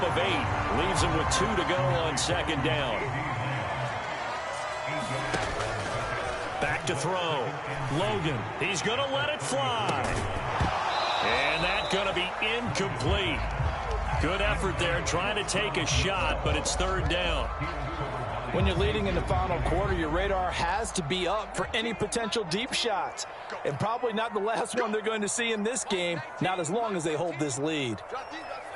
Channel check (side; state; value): both; identical; correlation 1.00